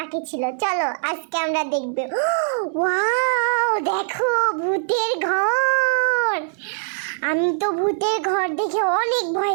ছিল। চলো আজকে আমরা দেখব। ওয়াও, দেখো ভূতের ঘর। আমি তো ভূতের ঘর দেখে অনেক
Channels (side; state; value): left; silent; digital silence